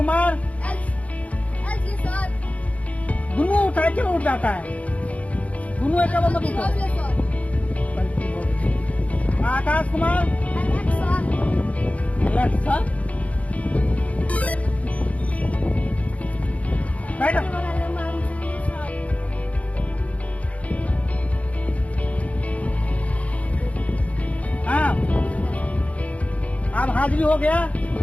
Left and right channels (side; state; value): right; late; 0.067 ms